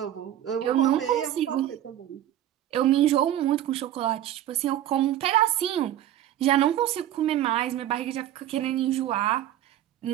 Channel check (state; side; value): quieter; left; 12.3 dB